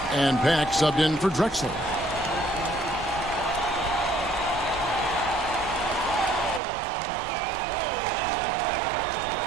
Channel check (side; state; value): left; drops out; at 6.6 s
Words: And Pack subbed in for Drexler.